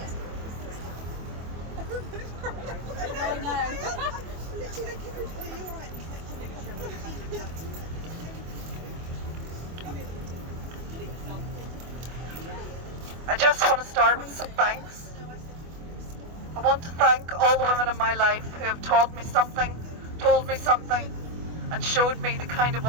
I know. I just want to start with some thanks. I want to thank all the women in my life who have taught me something, told me something, and showed me the kind of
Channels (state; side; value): late; left; 24 ms